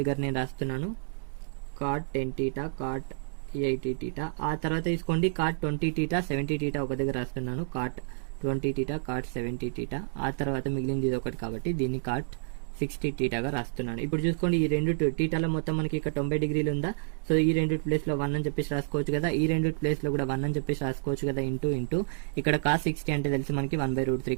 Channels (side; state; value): left; silent; digital silence